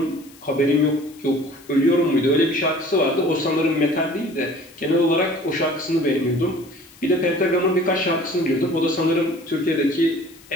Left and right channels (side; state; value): left; noise; hiss, 24 dB below the sound